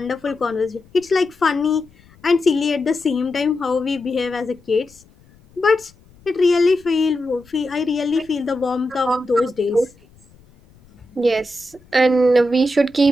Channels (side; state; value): left; noise; rumble, 28 dB below the sound